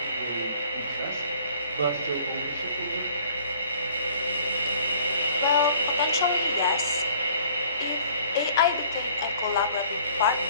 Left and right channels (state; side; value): inverted; both; correlation -0.56